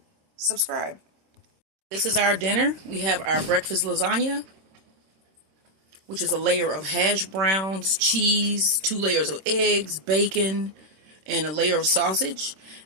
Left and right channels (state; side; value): late; left; 26 ms